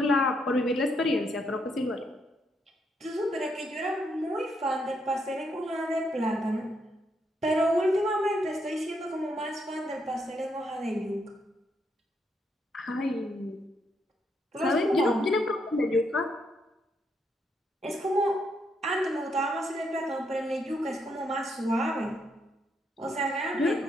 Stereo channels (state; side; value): normal; both; correlation 0.77